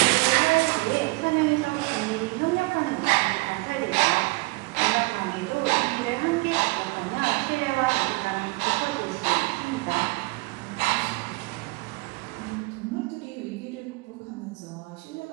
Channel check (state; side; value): quieter; left; 25.5 dB